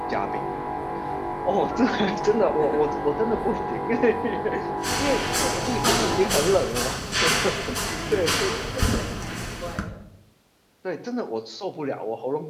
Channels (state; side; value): identical; both; correlation 1.00